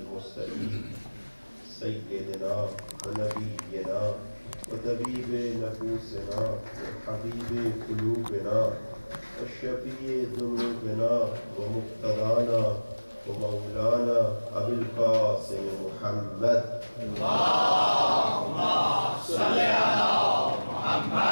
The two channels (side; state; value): both; inverted; correlation -1.00